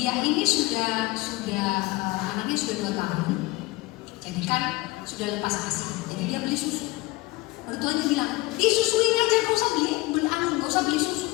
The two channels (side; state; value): right; quieter; 20.9 dB